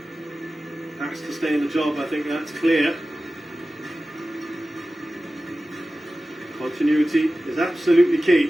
has to stay in the job, I think that's clear. Continuity is absolutely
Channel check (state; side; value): normal; both; correlation 0.96